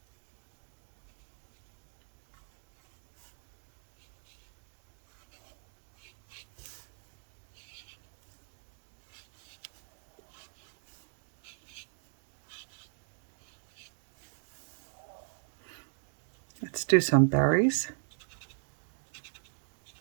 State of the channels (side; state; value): left; silent; digital silence